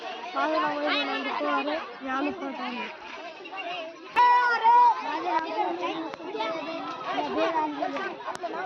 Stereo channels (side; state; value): both; identical; correlation 1.00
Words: माझं नाव आहे, मी आलू पराठा आणले।